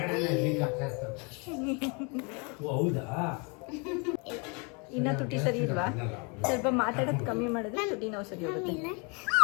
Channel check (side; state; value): right; quieter; 32.7 dB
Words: ಹೌದಾ? ಇನ್ನ ತುಟಿ ಸರಿ ಇಲ್ವಾ? ಸ್ವಲ್ಪ ಮಾತಾಡೋದು ಕಮ್ಮಿ ಮಾಡಿದ್ರೆ ತುಟಿ ನೋವು ಸರಿ ಹೋಗುತ್ತೆ.